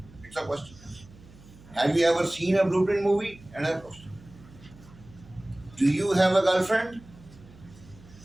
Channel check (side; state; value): right; noise; hum, 22 dB below the sound